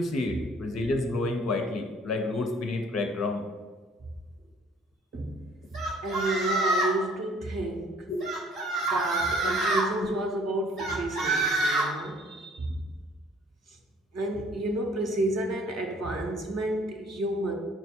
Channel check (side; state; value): both; normal; correlation 0.57